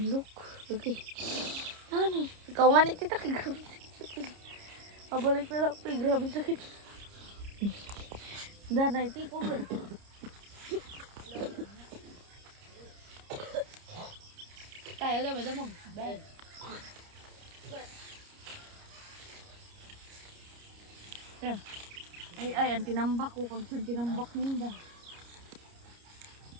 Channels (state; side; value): late; left; 30 ms